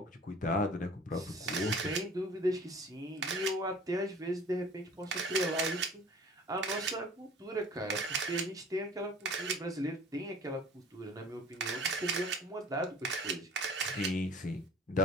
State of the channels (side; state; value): both; normal; correlation 0.47